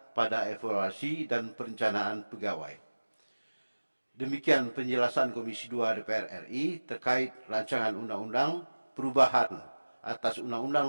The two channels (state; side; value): inverted; both; correlation -1.00